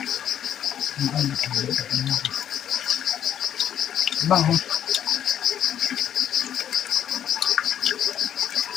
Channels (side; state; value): right; quieter; 10.0 dB